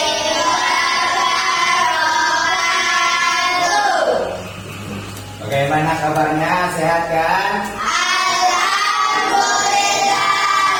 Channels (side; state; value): both; identical; correlation 1.00